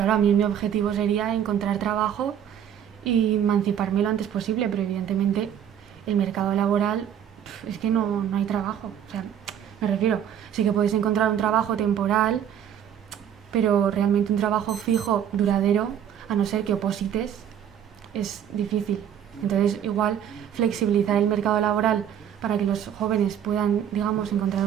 a mí mi objetivo sería encontrar trabajo y emanciparme lo antes posible, pero evidentemente el mercado laboral es que no hay trabajo. O sea, me refiero, sí que puedes encontrar un trabajo temporal, pero realmente un trabajo fijo, duradero, a no ser que oposites, es difícil. Entonces, igual flexibilizar el mercado laboral para que los jóvenes puedan, digamos, encontrar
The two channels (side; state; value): left; quieter; 9.3 dB